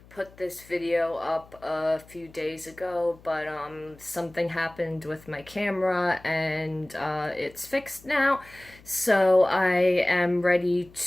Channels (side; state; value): left; noise; hum, 24 dB below the sound